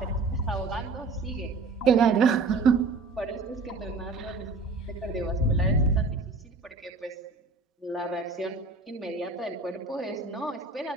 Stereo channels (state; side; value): quieter; left; 3.8 dB